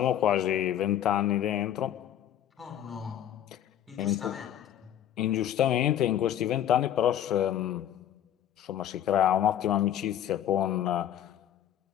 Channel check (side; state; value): right; quieter; 10.9 dB